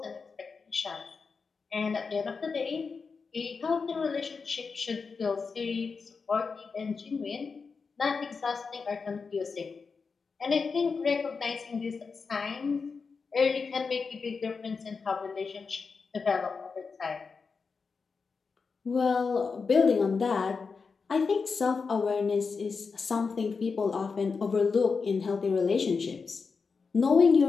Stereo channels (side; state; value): right; quieter; 5.0 dB